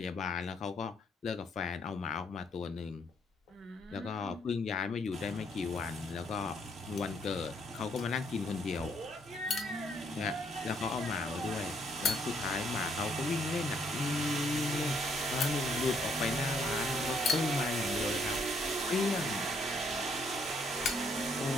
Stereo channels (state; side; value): normal; both; correlation 0.69